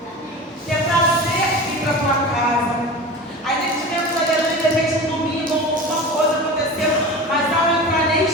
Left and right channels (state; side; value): normal; both; correlation 0.32